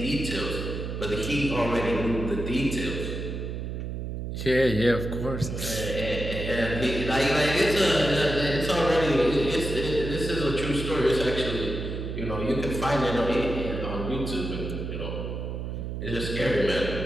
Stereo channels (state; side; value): noise; right; hum, 5 dB below the sound